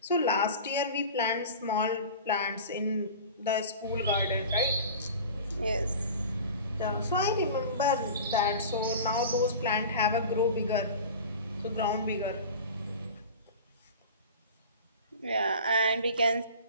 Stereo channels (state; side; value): inverted; both; correlation -0.36